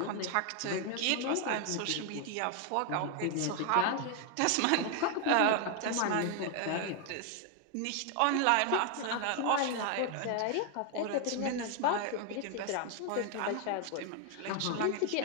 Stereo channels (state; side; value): different; both; correlation 0.00